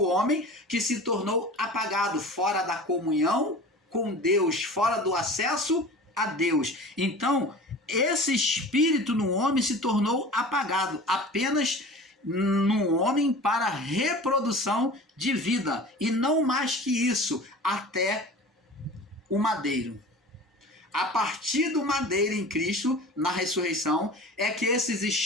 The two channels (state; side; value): normal; both; correlation 0.38